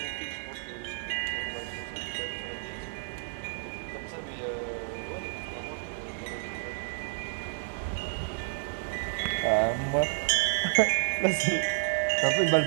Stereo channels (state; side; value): silent; left; 55 dB below the other